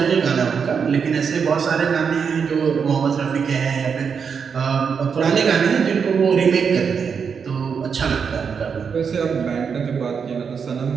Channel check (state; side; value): quieter; left; 6.3 dB